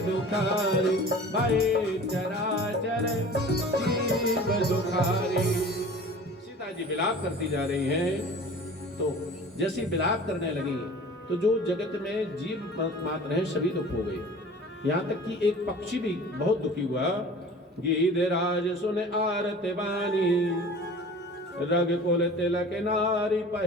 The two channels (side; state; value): both; normal; correlation 0.42